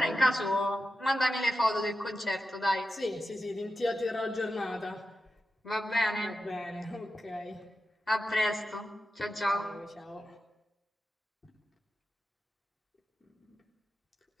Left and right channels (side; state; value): both; normal; correlation 0.91